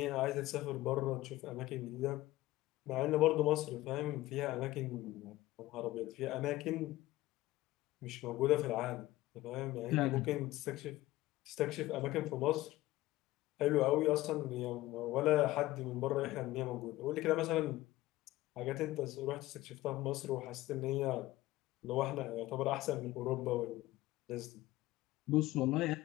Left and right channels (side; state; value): right; quieter; 17.2 dB